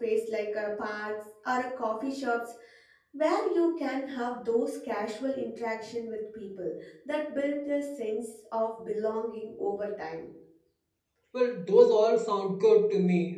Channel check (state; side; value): identical; both; correlation 1.00